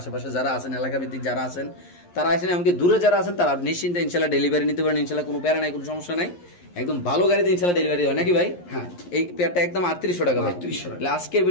যারা আছেন, এলাকা ভিত্তিক যারা আছেন তারা আইসেন, এমনকি দূরে যারা আছেন তারা নিশ্চিন্তে ইনশাআল্লাহ ডেলিভারি নিতে পারেন ইনশাআল্লাহ, কোনো প্যারা নাই, কোনো সমস্যা নাই, একদম ভালো গাড়িতে ইনশাআল্লাহ ডেলিভারি হয় নাকি ভাই? হ্যাঁ। এই পেয়ারটা একদম 3800 টাকা ভাই। 3800 টাকা আজকের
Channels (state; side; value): late; right; 11 ms